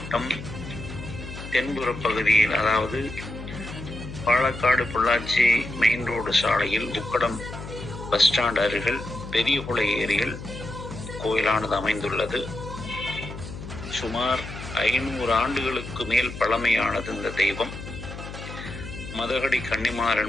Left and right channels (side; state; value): left; noise; hum, 11 dB below the sound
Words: தென்புற பகுதியில், அதாவது பாலக்காடு பொள்ளாச்சி மெயின் ரோடு சாலையில் உக்கடம் பஸ் ஸ்டாண்ட் அருகில் பெரியகுளை ஏரியில் கோயிலானது அமைந்துள்ளது. சுமார் 500 ஆண்டுகளுக்கு மேல் பழமையானது இந்த தெய்வம். மதகடி கன்னிமார்